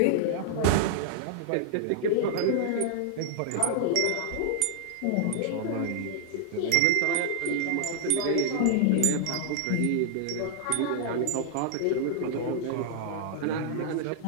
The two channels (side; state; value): both; different; correlation 0.00